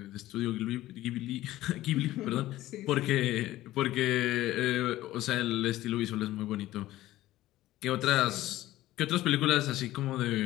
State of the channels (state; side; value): quieter; right; 15.6 dB